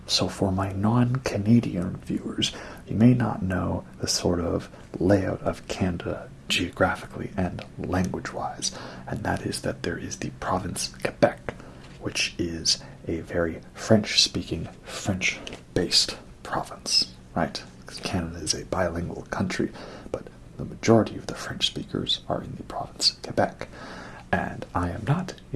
So for my non-Canadian viewers, you may not know the sort of layout of Canada geographically and language-wise, and that is that there is the province Quebec, which is a very French-speaking, French-based province, right? Because Canada is a bilingual country, but the majority of the French speakers are in the province Quebec, and I am not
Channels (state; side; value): identical; both; correlation 1.00